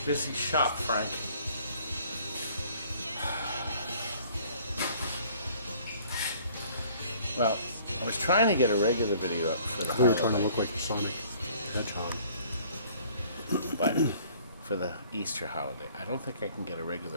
busy shop, Frank. Well, I was trying to get a regular video up for the We were trying to look like Sonic Hedgehog. But for the Easter holiday, I don't think I can get a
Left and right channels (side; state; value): both; inverted; correlation -0.55